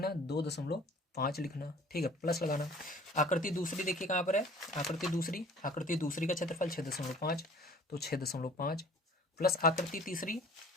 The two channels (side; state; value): both; normal; correlation 0.49